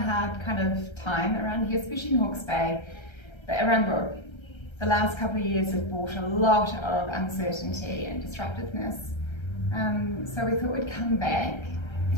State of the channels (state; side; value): late; right; 1.3 ms